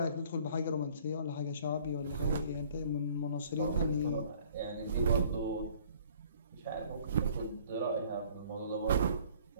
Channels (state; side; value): inverted; both; correlation -0.55